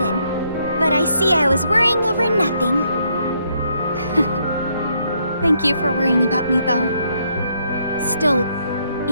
but I see I was worrying over nothing. Thank you for worrying about me, though. Still,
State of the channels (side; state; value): both; inverted; correlation -0.73